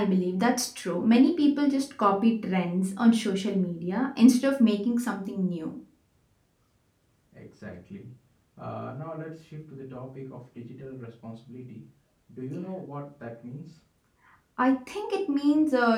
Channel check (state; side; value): identical; both; correlation 1.00